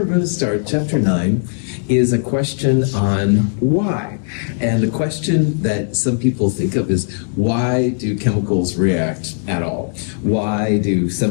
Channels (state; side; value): silent; right; 67 dB below the other